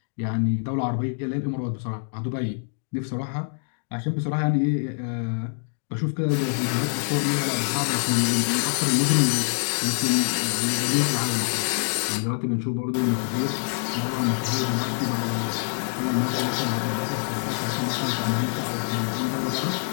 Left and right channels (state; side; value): silent; right; digital silence